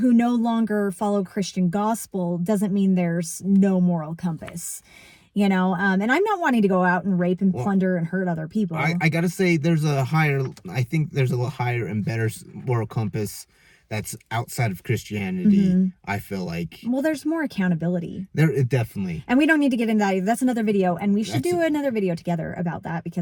no longer follow Christian gospel doesn't mean there's no moral compass. You know, and I'm not wanting to go out and rape and plunder and hurt other people. I gotta say, I think there's a higher and better moral compass that's outside of Christianity. I feel like. Well, there's more accountability. Definitely. And we don't need to get into that either. That's another video, and we should do another video together about that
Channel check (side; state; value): both; identical; correlation 1.00